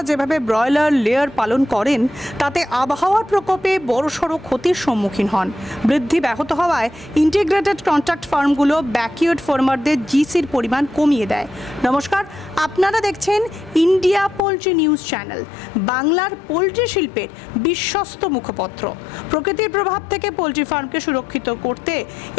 যেভাবে ব্রয়লার লেয়ার পালন করেন তাতে আবহাওয়ার প্রকোপে বড়সড় ক্ষতির সম্মুখীন হন। বৃদ্ধি ব্যাহত হওয়ায় ইন্টিগ্রেটেড কন্ট্রাক্ট ফার্মগুলো ব্যাকইয়ার্ড ফার্মারদের জিসির পরিমাণ কমিয়ে দেয়। নমস্কার, আপনারা দেখছেন ইন্ডিয়া পোলট্রি নিউজ চ্যানেল, বাংলার পোলট্রি শিল্পের বিশ্বস্ত মুখপত্র। প্রকৃতির প্রভাব থেকে পোলট্রি ফার্মকে সুরক্ষিত করতে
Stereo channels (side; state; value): right; drops out; at 14.4 s